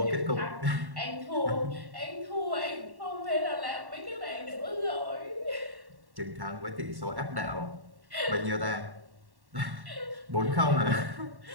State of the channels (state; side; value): late; left; 1.1 ms